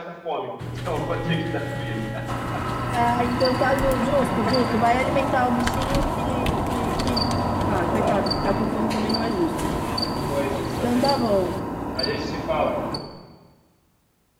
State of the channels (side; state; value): both; identical; correlation 1.00